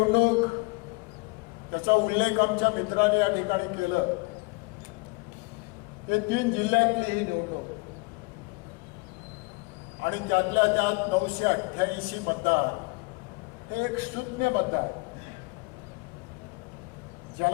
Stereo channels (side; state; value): right; quieter; 27.7 dB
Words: त्याचा उल्लेख आमच्या मित्रांनी या ठिकाणी केलं, हे 3 जिल्ह्यातली ही निवडणूक आणि त्यातल्या त्यात 988 मतदार हे एक शून्य मतदार,